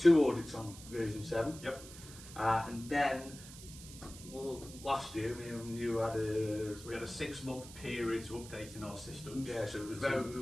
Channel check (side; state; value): right; noise; hiss, 15 dB below the sound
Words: audits on version 7. Yep. And then, well, last year, me and you had a... So we had a 6-month period to updating our systems. Yeah, so it was we